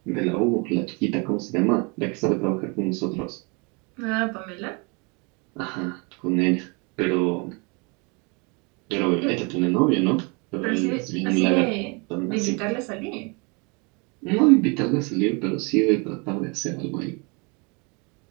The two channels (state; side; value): quieter; left; 31.1 dB